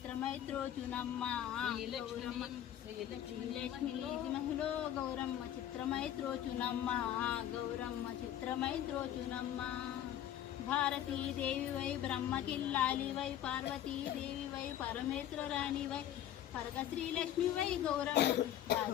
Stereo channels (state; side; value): quieter; right; 11.2 dB